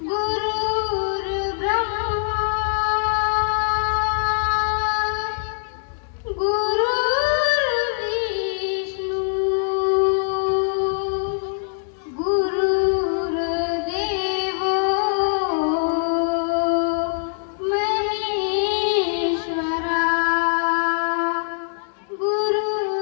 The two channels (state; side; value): silent; right; digital silence